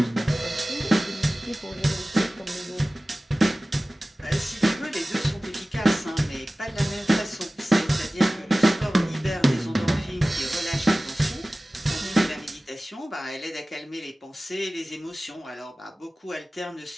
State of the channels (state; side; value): normal; both; correlation 0.97